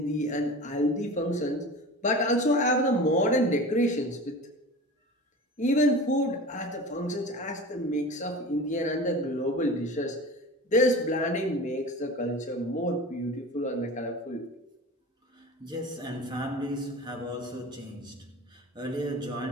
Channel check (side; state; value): both; normal; correlation 0.35